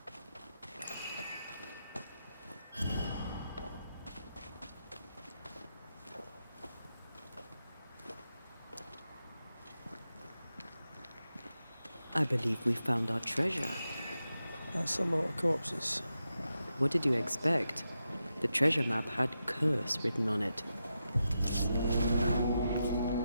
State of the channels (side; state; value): both; inverted; correlation -0.88